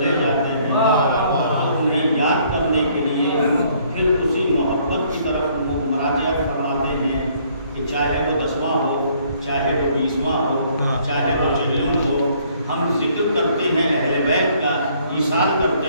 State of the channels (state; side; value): inverted; both; correlation -0.63